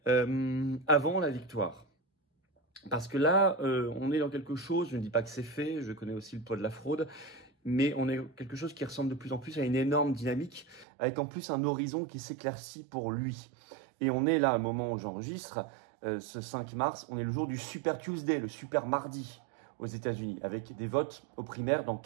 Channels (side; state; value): left; drops out; at 10.9 s